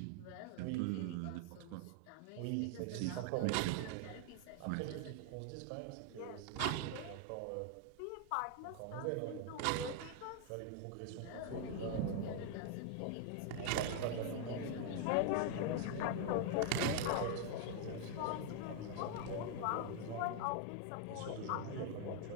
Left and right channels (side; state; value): both; different; correlation 0.00